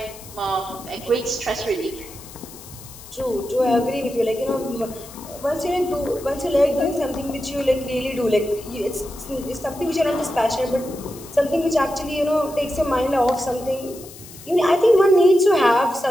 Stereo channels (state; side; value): noise; left; hiss, 17 dB below the sound